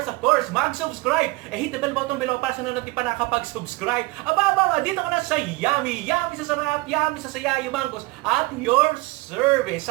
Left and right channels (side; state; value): left; quieter; 22.5 dB